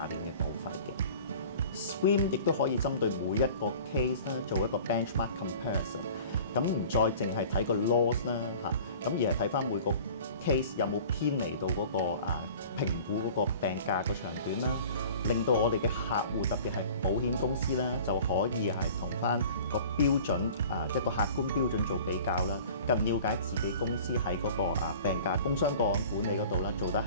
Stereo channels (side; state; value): both; inverted; correlation -0.44